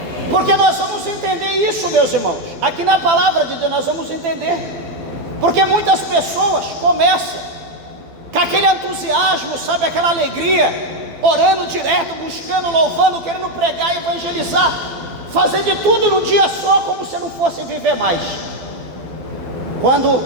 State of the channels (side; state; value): left; late; 12 ms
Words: Porque nós vamos entender isso, meus irmãos. Aqui na palavra de Deus nós vamos entender. Porque muitas pessoas começam com aquele entusiasmo, sabe, aquela alegria, orando direto, buscando, louvando, querendo pregar, evangelizar, fazer de tudo num dia só, como se não fosse viver mais. Quando